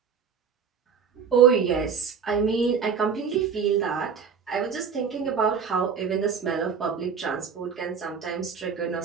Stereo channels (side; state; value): left; quieter; 6.5 dB